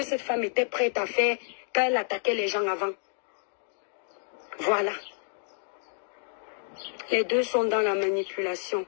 cette femme était prête à faire quand elle attaquait les gens avant. Voilà. Les deux sont dans la manipulation.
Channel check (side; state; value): right; silent; digital silence